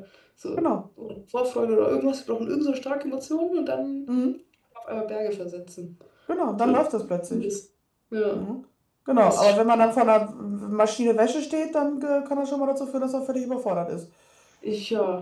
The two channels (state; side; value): identical; both; correlation 1.00